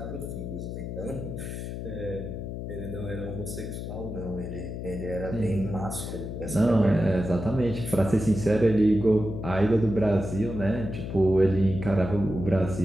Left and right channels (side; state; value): left; noise; hum, 6 dB below the sound